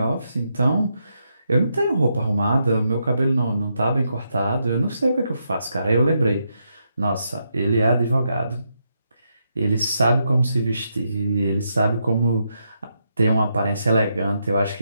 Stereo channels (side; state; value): both; inverted; correlation -0.81